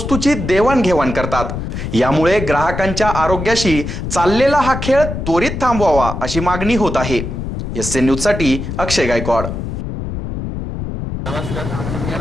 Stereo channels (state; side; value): noise; left; rumble, 5 dB below the sound